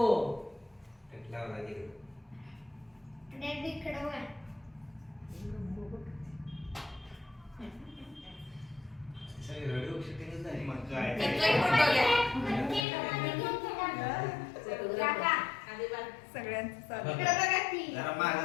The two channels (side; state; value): right; drops out; at 12.9 s